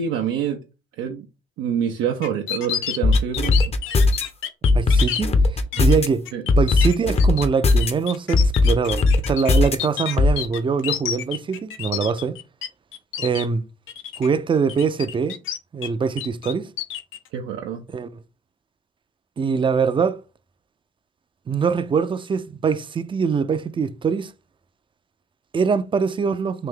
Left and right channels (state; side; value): normal; both; correlation 0.67